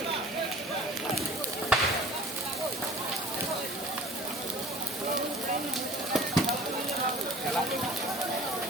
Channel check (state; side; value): normal; both; correlation 0.46